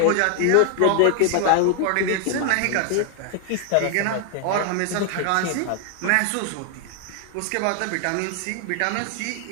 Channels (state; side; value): different; both; correlation 0.00